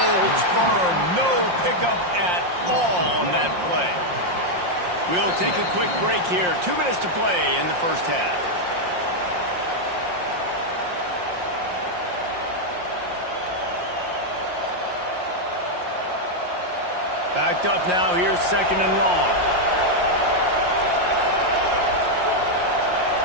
firm. No pickup at all on that play. We'll take a quick break here. 2 minutes to play in the first half. Backed up now. Here's second and long.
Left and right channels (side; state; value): left; late; 5.6 ms